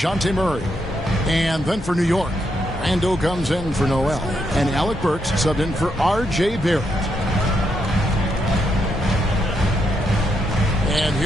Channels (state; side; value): normal; both; correlation 0.79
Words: Murray. And then for New York, Randall comes in for Noel. And Alec Burks subbed in for R.J. Barrett. And